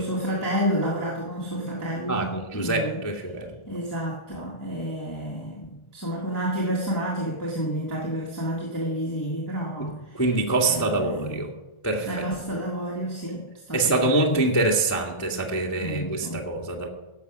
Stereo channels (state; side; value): late; right; 1.4 ms